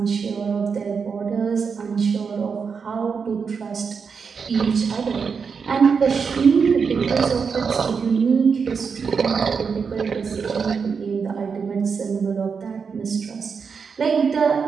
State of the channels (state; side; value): quieter; left; 5.8 dB